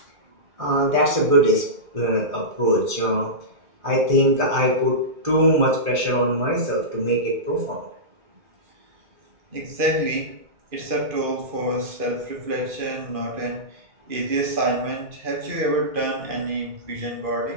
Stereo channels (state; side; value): late; left; 2.2 ms